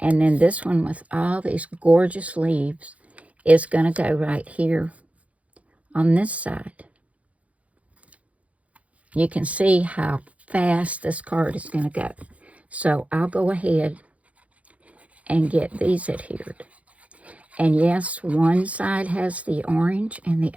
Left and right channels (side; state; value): left; late; 0.066 ms